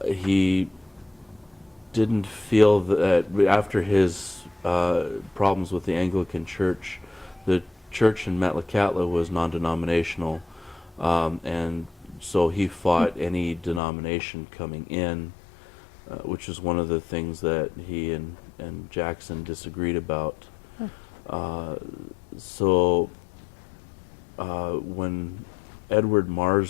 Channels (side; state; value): right; drops out; at 13.8 s